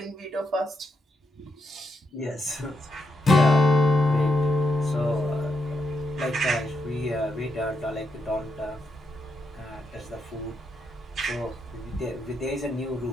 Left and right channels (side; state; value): both; normal; correlation 0.82